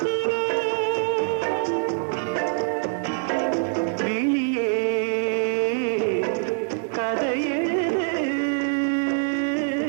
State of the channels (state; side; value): silent; left; digital silence